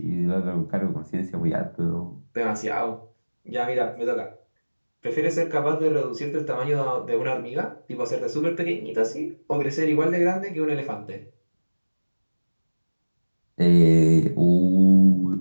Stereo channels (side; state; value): both; inverted; correlation -1.00